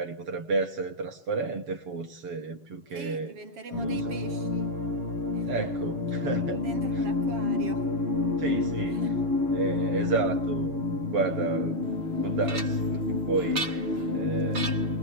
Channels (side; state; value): left; late; 7.0 ms